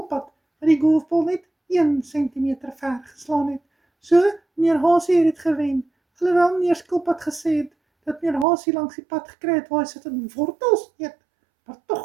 wat die golfbal net 1 sentimeter ver geslaan het. So, meneer Hasie het dit gewen. Alhoewel meneer Skilpad gesê het dat meneer Hasie langs die pad gekry het waar hy sit in wortels eet. Maar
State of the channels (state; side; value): drops out; left; at 8.5 s